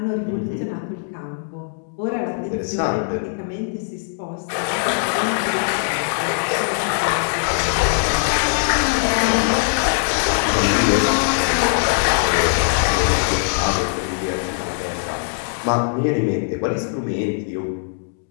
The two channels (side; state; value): right; silent; digital silence